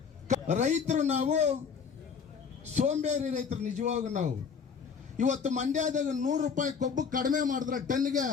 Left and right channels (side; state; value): right; quieter; 6.2 dB